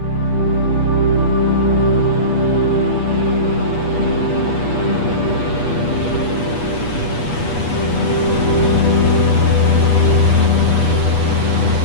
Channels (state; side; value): late; right; 8.3 ms